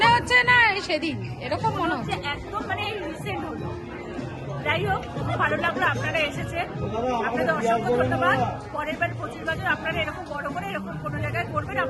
হচ্ছে না সেদিন এরকম মনে হচ্ছে, একদম মানে রিসেন্ট হলো। যাই হোক, খুব ভালো লাগলো আপনারা এসেছেন, আপনাদের অসংখ্য ধন্যবাদ। পরের বার 25 বছর আপনারা এরকম বড় করে এরকম কোনো জায়গায় করবেন,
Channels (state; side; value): identical; both; correlation 1.00